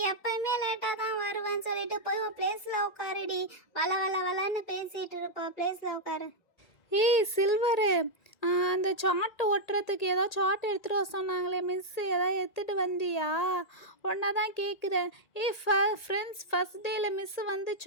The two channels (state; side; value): late; right; 2.0 ms